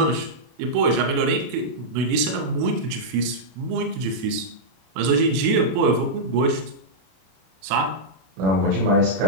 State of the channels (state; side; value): late; left; 32 ms